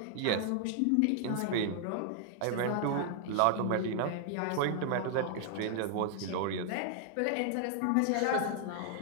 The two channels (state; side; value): different; both; correlation 0.00